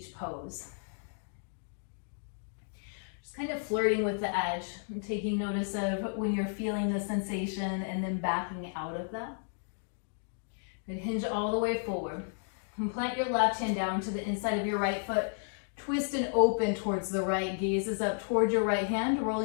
pose. Just kind of flirting with the edge, and taking notice of when you're feeling the sensation and then backing out of that. And hinge all the way forward. And plant your left hand down to the inside of your right foot. Twist and open towards the right. Gaze is up towards your right hand,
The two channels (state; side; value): silent; right; digital silence